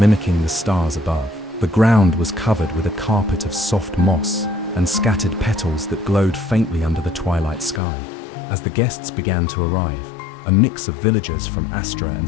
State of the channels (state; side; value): drops out; right; at 7.8 s